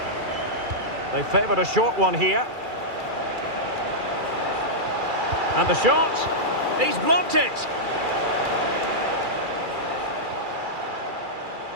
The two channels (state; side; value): late; left; 2.4 ms